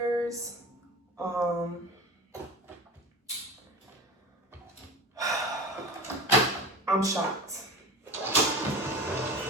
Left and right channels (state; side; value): normal; both; correlation 0.32